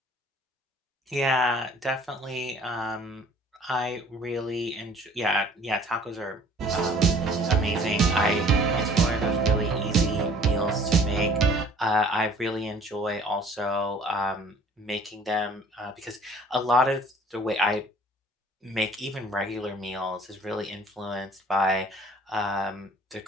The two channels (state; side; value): normal; both; correlation 0.53